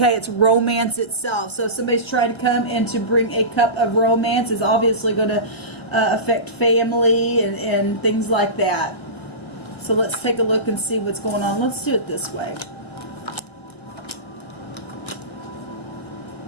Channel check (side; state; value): right; late; 1.3 ms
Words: It's romance itself. So if somebody's trying to come and to bring a cup of romance, is obviously going to affect family and things like that. So let's take a look and see what's going on. Let's do it this way.